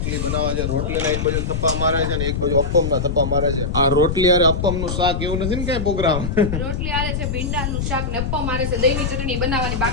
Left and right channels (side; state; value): left; noise; rumble, 2 dB below the sound